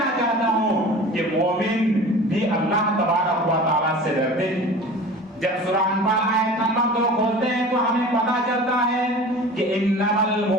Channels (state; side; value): normal; both; correlation 0.39